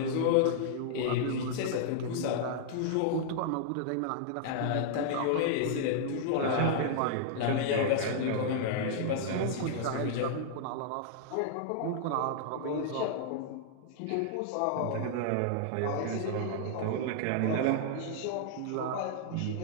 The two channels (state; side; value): different; both; correlation -0.01